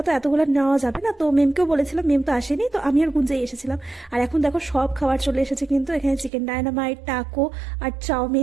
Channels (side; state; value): left; drops out; at 6.3 s